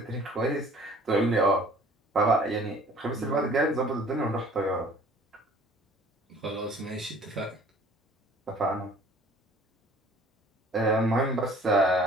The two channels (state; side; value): normal; both; correlation 0.52